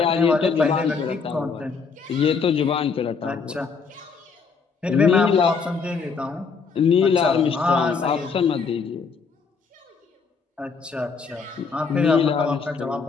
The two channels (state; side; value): quieter; right; 5.3 dB